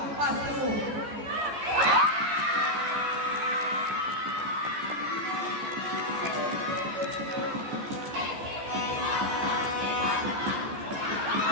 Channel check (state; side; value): late; left; 14 ms